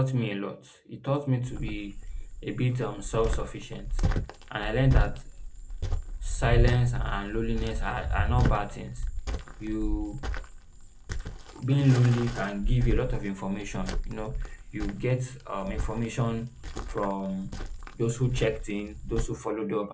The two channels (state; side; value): identical; both; correlation 1.00